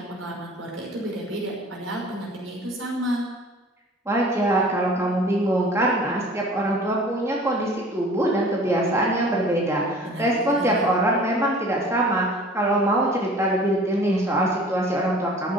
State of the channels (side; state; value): both; normal; correlation 0.46